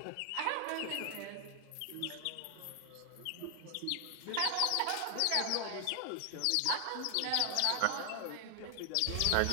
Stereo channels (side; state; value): both; different; correlation 0.00